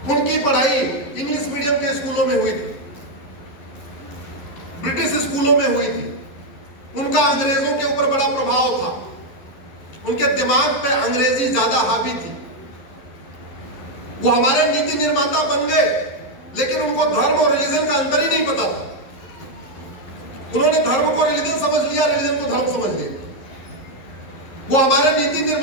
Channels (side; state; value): right; late; 11 ms